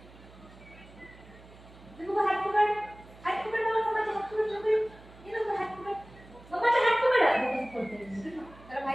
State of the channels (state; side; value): noise; right; hum, 22 dB below the sound